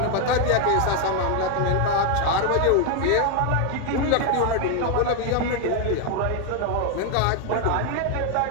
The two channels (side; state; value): both; different; correlation 0.01